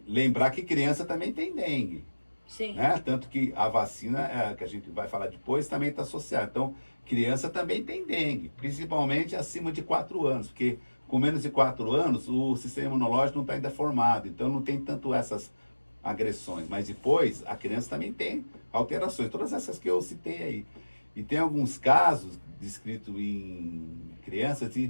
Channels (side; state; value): both; inverted; correlation -1.00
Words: lembrar que criança também tem dengue. Sim. Né? Tanto que a vacina, que a gente vai falar depois, também está associada. Então, criança também tem dengue, principalmente acima de 4 anos, porque com menos de 4 anos o sistema imunológico não está ainda formado, então não tem tanto essas agressões. Mas depois, a criança também tem alterações, todas essas que eu citei aí. E tem alguns casos descritos em crianças